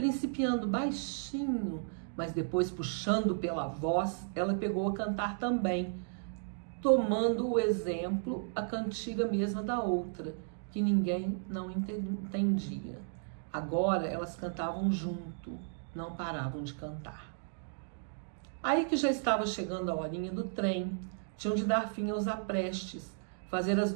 baixinho, mas depois puxando pela voz, ela pegou a cantar também, tomando o exemplo, a cantiga mesma da outra, que ninguém não entendia. Agora elas cantavam junto, não paravam de cantar. Aí que já estava chegando a horinha do trem, tinham de dar fim aos aprestes, fazer as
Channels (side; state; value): left; silent; digital silence